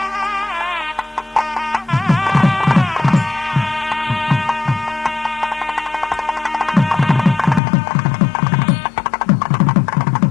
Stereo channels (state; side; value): drops out; right; at 7.6 s